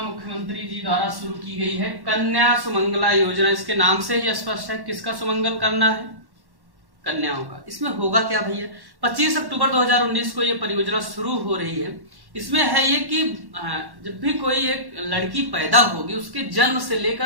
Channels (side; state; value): left; late; 1.1 ms